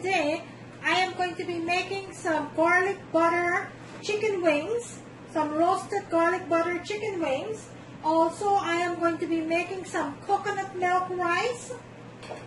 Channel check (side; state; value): both; identical; correlation 1.00